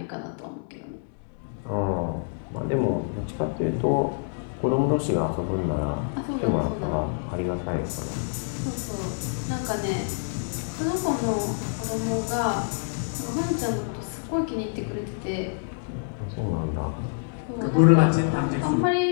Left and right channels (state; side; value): silent; right; digital silence